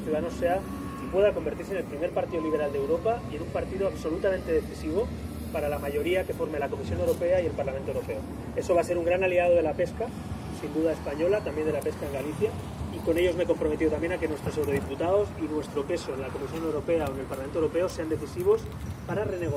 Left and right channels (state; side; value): identical; both; correlation 1.00